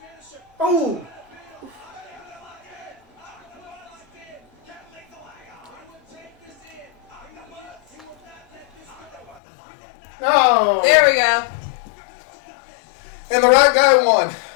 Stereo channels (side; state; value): right; drops out; at 9.4 s